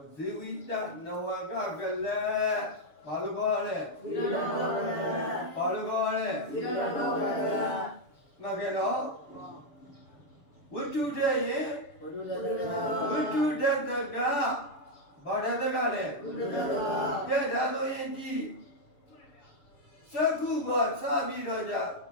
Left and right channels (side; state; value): right; late; 7.0 ms